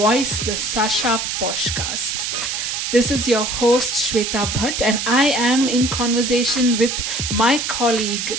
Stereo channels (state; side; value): noise; right; hiss, 2 dB below the sound